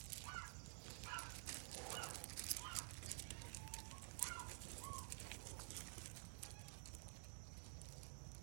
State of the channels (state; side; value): silent; left; digital silence